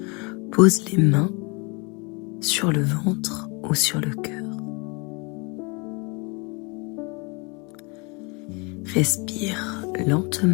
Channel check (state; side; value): quieter; right; 30.3 dB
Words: Pose les mains sur le ventre ou sur le cœur. Respire